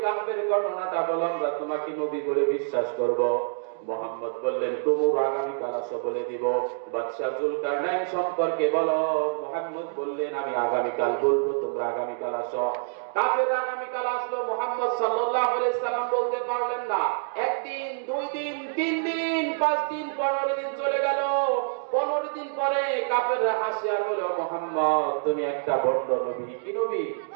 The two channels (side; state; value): left; silent; digital silence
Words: কাফের ঘটনাটা বলো, আমরা তোমাকে নবী বলে বিশ্বাস করব। মুহাম্মদ বললেন তোমরা আগামীকাল আসো বলে দিব। বাদশা জুলকারনাইন সম্পর্কে বলো। মুহাম্মদ বললেন আমি আগামীকাল বলবো, তোমরা আগামীকাল আসো। কাফেররা আগামীকাল আসলো। মুহাম্মদ সাল্লাল্লাহু আলাইহি সাল্লাম বলতে পারলেন না। একদিন, 2 দিন, 3 দিন, 5 দিন, 15 দিন চলে গেল। 15 দিন পরে কাফেররা হাসি আর বলল, মুহাম্মদ তুমি একটা ভণ্ড নবী। কি নবী?